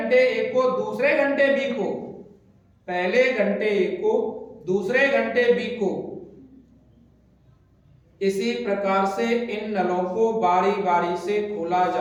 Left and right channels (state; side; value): identical; both; correlation 1.00